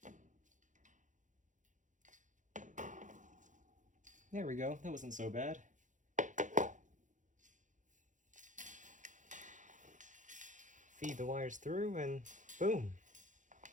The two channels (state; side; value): late; left; 0.36 ms